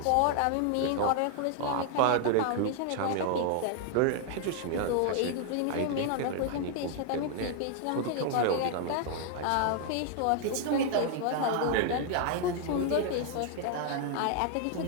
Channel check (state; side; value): different; both; correlation 0.00